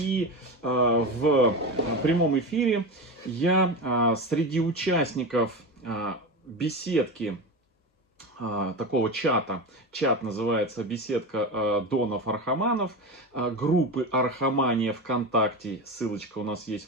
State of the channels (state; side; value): normal; both; correlation 0.22